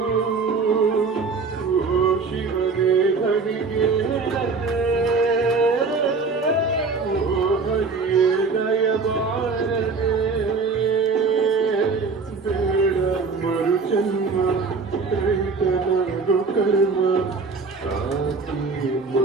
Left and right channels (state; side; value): quieter; left; 4.5 dB